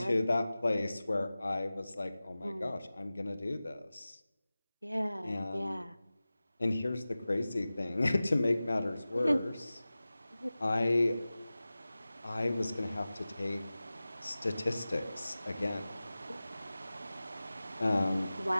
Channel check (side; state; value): both; inverted; correlation -0.97